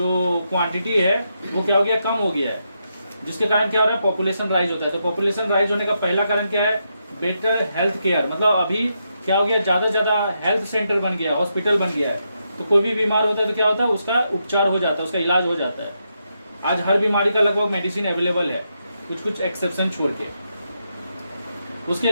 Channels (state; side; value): inverted; both; correlation -0.82